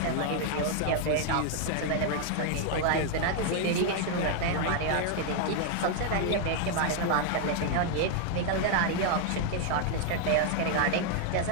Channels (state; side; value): different; both; correlation 0.00